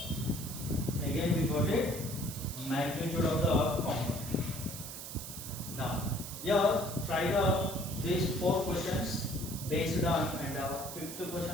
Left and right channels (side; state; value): right; noise; hiss, 9 dB below the sound